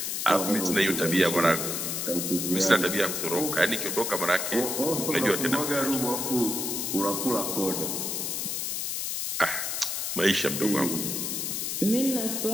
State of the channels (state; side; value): noise; left; hiss, 2 dB below the sound